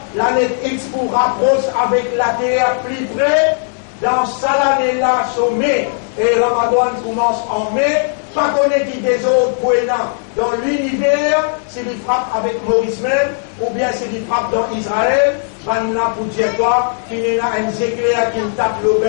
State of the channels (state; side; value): silent; right; digital silence